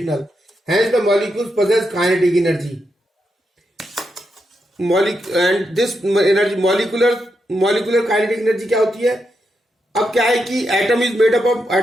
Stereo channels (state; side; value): normal; both; correlation 0.84